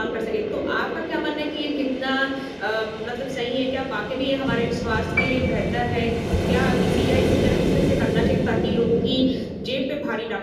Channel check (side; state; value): both; identical; correlation 1.00